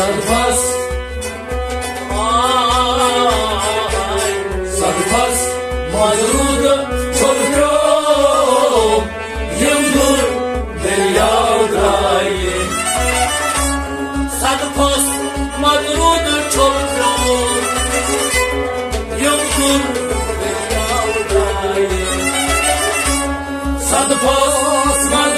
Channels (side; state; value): both; identical; correlation 1.00